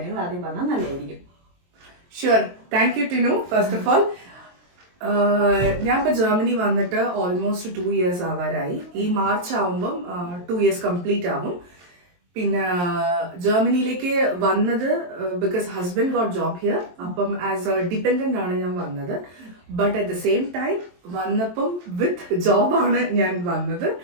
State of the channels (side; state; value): left; late; 23 ms